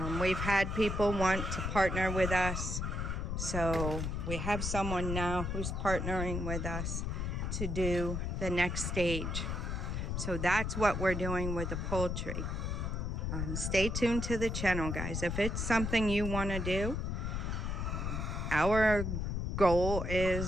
We've had people want to partner with us. So we have someone now who's partnering with us to do the next stage. So that's what we're doing with the poultry. Stay tuned to the channel, guys. If it's something you want to do, our goal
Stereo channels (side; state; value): left; noise; rumble, 2 dB below the sound